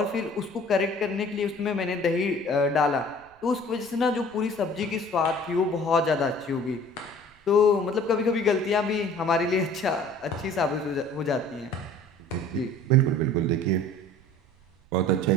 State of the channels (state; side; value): noise; right; rumble, 30 dB below the sound